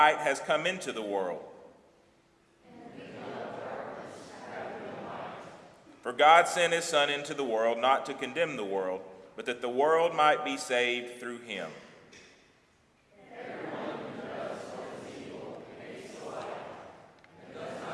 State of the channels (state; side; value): identical; both; correlation 1.00